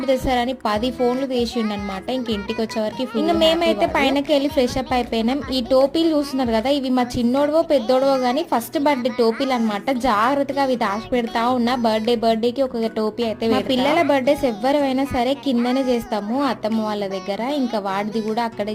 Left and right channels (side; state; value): both; identical; correlation 1.00